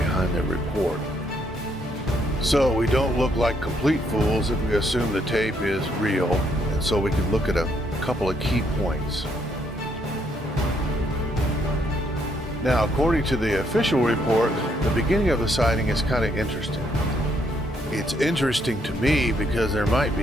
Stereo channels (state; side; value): normal; both; correlation 0.72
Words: their report. So we don't look like complete fools if we assume the tape is real, and so we can look at a couple of key points. Now, according to the official report, the beginning of the sighting is kind of interesting. It's interesting to me because there might